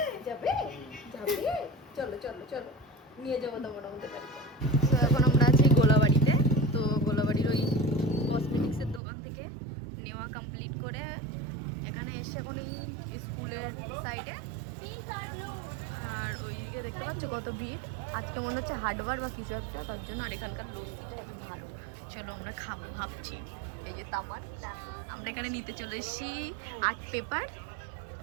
চলো চলো চলো নিয়ে যাবো তোমার আমাদের বাড়িতে। তো এখন আমরা আছি গোলাবাড়িতে। তো গোলাবাড়ির ওই কসমেটিক্সের দোকান থেকে নেওয়া কমপ্লিট করে এখানে এসে এখন এই স্কুলের সাইডে, আর ওইদিকে দেখতে পাচ্ছ কত ভিড়। আজকে মনে হচ্ছে হাটবার বা কিছু একটা, তার জন্য। আর এখানকার কিছু ভালো। চলো আমরা খাবো ভাবছি। এই যে তামান, আমরা এখানে নিতে চলে এসেছি আর্ট পেপার।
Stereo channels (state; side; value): drops out; left; at 9.0 s